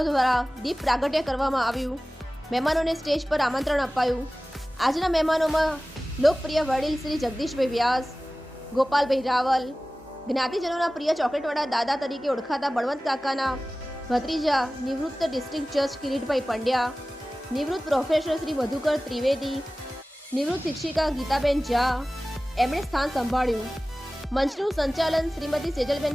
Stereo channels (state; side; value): normal; both; correlation 0.97